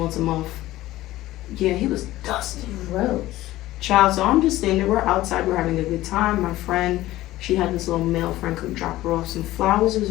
a month. Yeah, he was dusty. Gross. Child. So I'm just standing there. We're outside. We're having a good time. My friend, she had this little male friend come drop her off some flowers. It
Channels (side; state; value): right; quieter; 16.2 dB